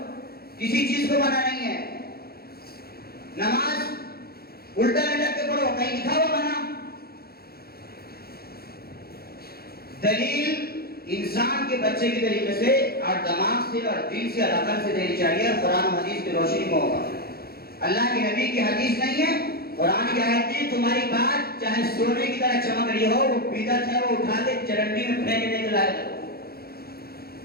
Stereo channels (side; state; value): right; late; 0.45 ms